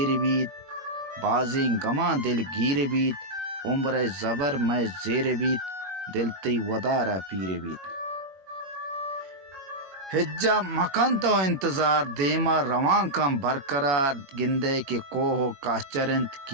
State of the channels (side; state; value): left; late; 21 ms